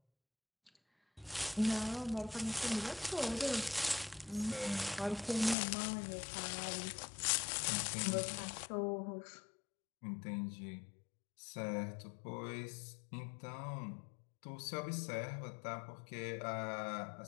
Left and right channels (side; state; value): right; drops out; at 5.6 s